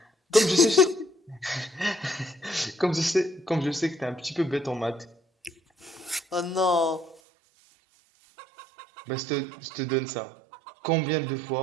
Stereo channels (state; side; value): drops out; left; at 7.2 s